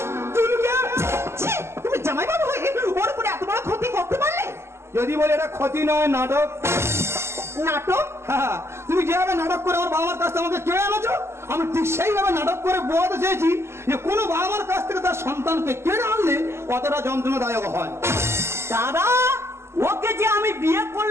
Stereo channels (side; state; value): left; late; 0.13 ms